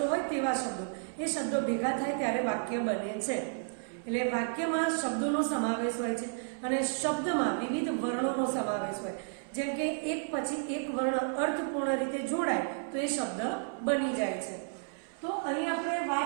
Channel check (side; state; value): left; silent; 56 dB below the other